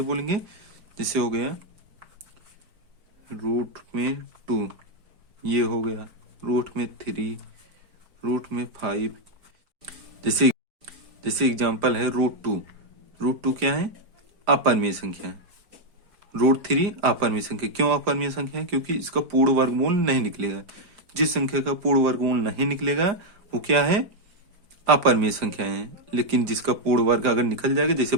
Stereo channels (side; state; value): left; late; 5.0 ms